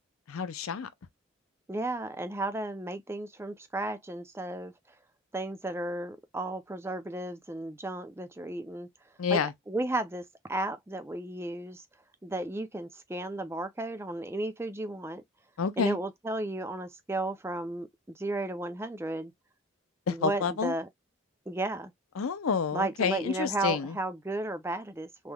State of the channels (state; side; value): normal; both; correlation 0.38